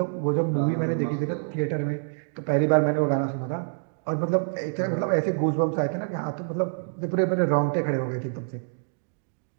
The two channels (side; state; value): left; silent; digital silence